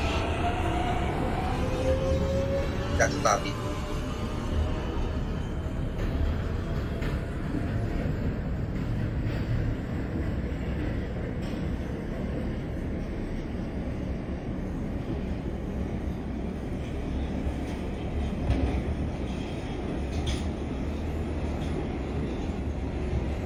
That's a copy.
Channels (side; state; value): both; identical; correlation 1.00